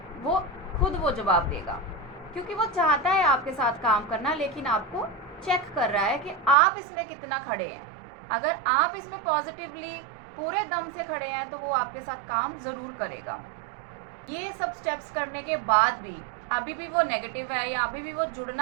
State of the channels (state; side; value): drops out; left; at 6.6 s